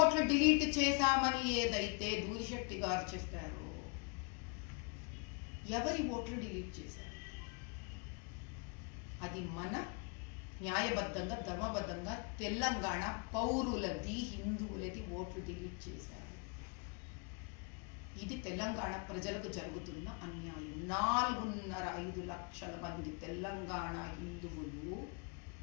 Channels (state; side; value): quieter; right; 34.5 dB